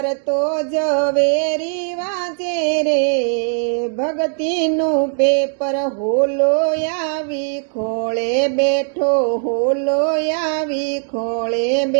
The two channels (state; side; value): silent; left; 56 dB below the other